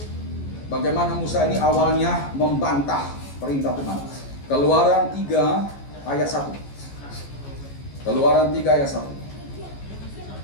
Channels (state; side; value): late; right; 14 ms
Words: Bagaimana Musa ini awalnya membantah perintah Tuhan. Keluaran 3 ayat 1. Keluaran 3 ayat 1.